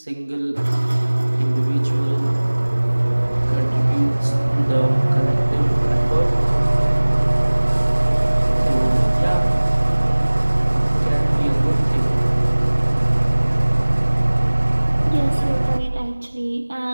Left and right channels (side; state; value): both; inverted; correlation -1.00